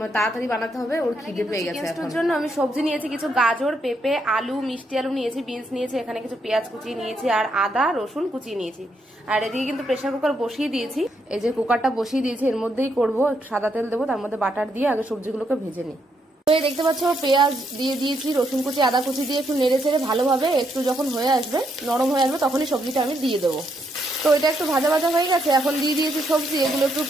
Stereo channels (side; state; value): both; normal; correlation 0.77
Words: তাড়াতাড়ি বানাতে হবে, ওর খিদে পেয়ে গেছে। চিকেন জন্য আমি সবজি নিয়েছি কিছু গাজর, পেঁপে, আলু, মিষ্টি আলু নিয়েছি, বিনস নিয়েছি, এখানে কিছু পেঁয়াজ কুচিয়ে নিয়েছি আর আদা রসুন কুচিয়ে নিয়েছি। আর এদিকে কিন্তু প্রেসার কুকার বসিয়ে দিয়েছি, এই যে কুকারটা বসিয়ে দিয়েছি, এর মধ্যেই করবো, সাদা তেল দেবো, তার মধ্যে বাটার দিয়ে আগে সবজিগুলোকে ভেজে নিই। তো এই দেখতে পাচ্ছ পেঁয়াজ দিয়ে দিয়েছি, রসুন কুচি আদা কুচি দিয়ে একটু নেড়ে চেড়ে ভালোভাবে একটু যখন হয়ে আসবে নরম হয়ে আসবে তখনই সবজিটা আমি দিয়ে দেবো। তো এটা একটু ভাজা ভাজা হয়ে গেছে, এখন দিয়ে দিয়েছি সবজি, এগুলো একটু